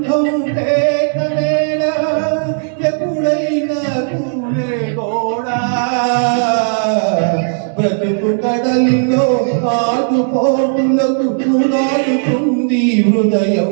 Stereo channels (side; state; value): left; silent; digital silence